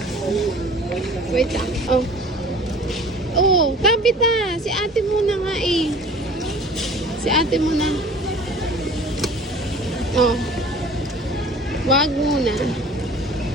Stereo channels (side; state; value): both; normal; correlation 0.46